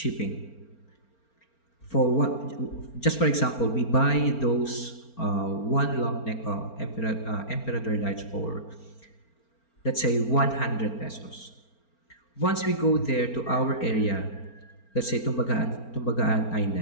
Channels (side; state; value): right; late; 4.4 ms